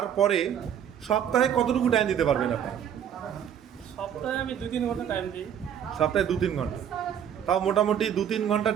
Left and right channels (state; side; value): quieter; left; 9.2 dB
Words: সপ্তাহে কতটুকু টাইম দিতে পারবেন আপনি? সপ্তাহে আমি 2-3 ঘন্টা টাইম দিই। সপ্তাহে 2-3 ঘন্টা? তাও মোটামুটি 2-3 ঘন্টা